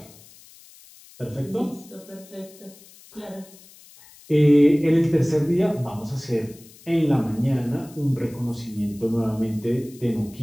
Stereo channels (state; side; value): noise; left; hiss, 23 dB below the sound